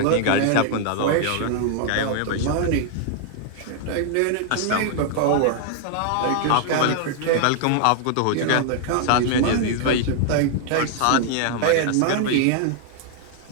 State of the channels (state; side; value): different; both; correlation 0.00